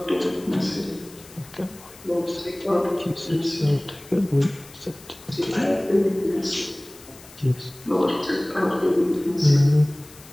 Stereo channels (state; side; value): noise; left; hiss, 21 dB below the sound